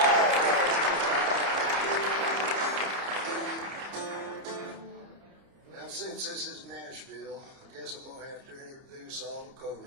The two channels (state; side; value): late; left; 30 ms